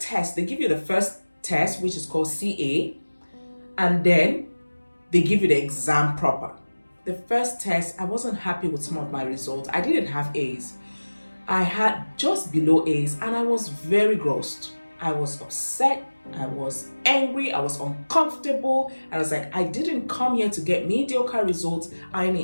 test, they give you the first test, which is called CA, and then they give you the exam proper. The first test, I wasn't happy with some of my results. I didn't have A's. I had just below A's, and I was very grossed. I was upset, I was angry, I was uncomfortable. I was like, I didn't come here to get mediocre results. I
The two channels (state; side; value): inverted; both; correlation -1.00